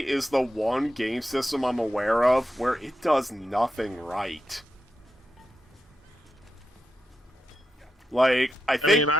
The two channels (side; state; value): both; normal; correlation 0.87